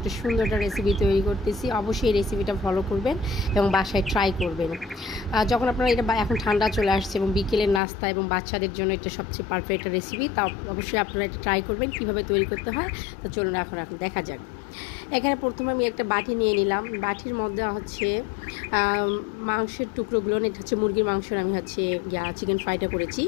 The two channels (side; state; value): right; drops out; at 7.8 s